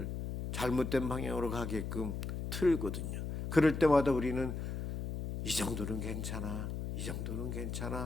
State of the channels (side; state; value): left; noise; hum, 4 dB below the sound